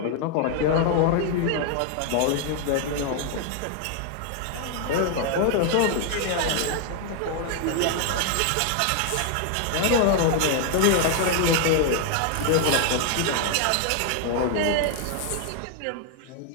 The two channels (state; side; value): different; both; correlation 0.00